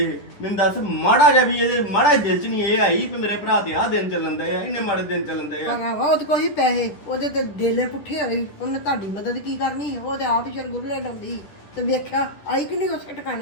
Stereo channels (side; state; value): right; late; 10 ms